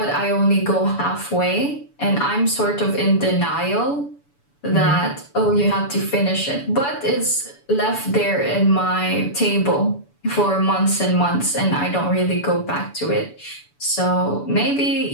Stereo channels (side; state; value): right; late; 7.0 ms